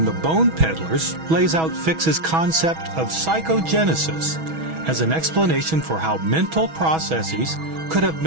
The Bone Peddlers lays out Fix's concept of psychogenesis as an explanation for how mental processes could have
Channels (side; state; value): left; late; 6.2 ms